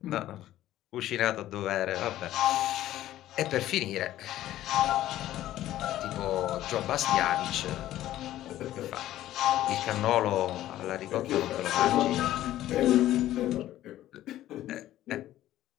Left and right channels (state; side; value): quieter; right; 13.8 dB